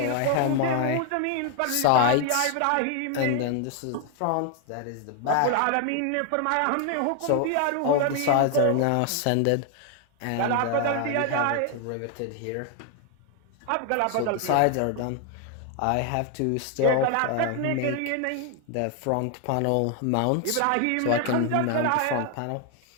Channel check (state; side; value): different; both; correlation 0.00